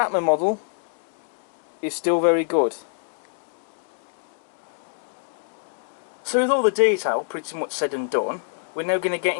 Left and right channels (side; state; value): right; silent; digital silence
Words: model is still very good. So with all the detail pretty much said and done, we're now going to get